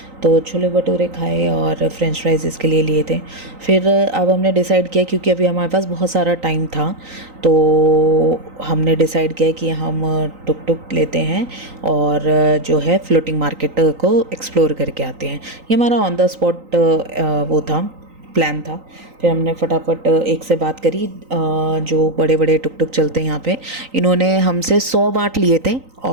तो छोले भटूरे खाए और फ्रेंच फ्राइज इसके लिए लिए थे। फिर अब हमने डिसाइड किया, क्योंकि अभी हमारे पास बहुत सारा टाइम था, तो हमने डिसाइड किया कि हम टुक टुक लेते हैं और जो है फ्लोटिंग मार्केट को एक्सप्लोर करके आते हैं। ये हमारा ऑन द स्पॉट वो था, प्लान था। फिर हमने फटाफट एक से बात करी, जो बड़े बड़े टुक टुक चलते हैं यहाँ पे, इन्होंने हमसे 100 बाट लिए थे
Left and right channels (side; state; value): left; late; 3.9 ms